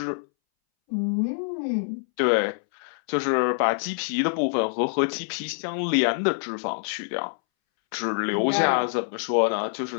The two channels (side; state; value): right; silent; 61 dB below the other